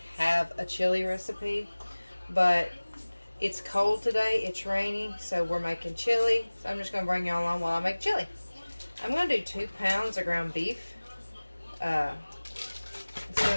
have a chili recipe, but it's cold today, it's rainy, so we're making chili. So I'm just going to bring y'all along while I make chili. I'm going to do 2 pounds of ground beef. It's going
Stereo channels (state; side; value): inverted; both; correlation -1.00